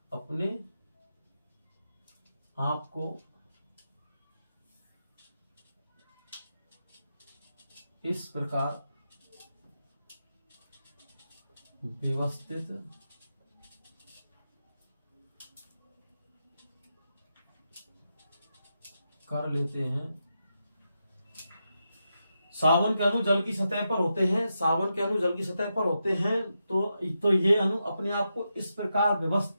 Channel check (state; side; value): inverted; both; correlation -0.87